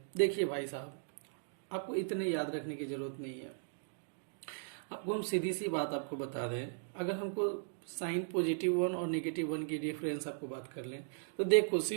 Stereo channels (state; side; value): silent; left; digital silence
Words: देखिए भाई साहब, आपको इतने याद रखने की जरूरत नहीं है। आपको हम सीधी सी बात आपको बता दें, अगर हमको साइन +1 और -1 की डिफरेंस आपको बात कर लें तो देखो